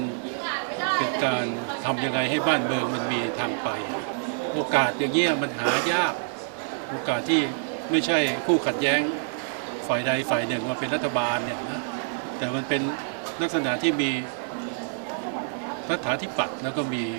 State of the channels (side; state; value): left; silent; 60 dB below the other